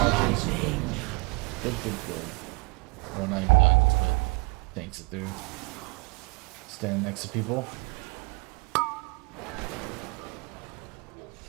Good. Well, not even dodges, but tanks it through. Stand next to people.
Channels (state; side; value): quieter; left; 27.8 dB